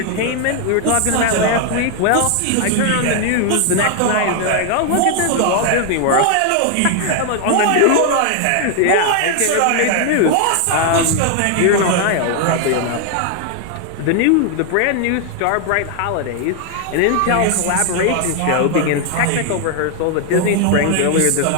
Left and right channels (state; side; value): different; both; correlation 0.00